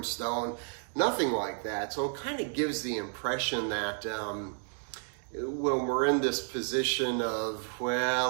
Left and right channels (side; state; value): left; silent; 57 dB below the other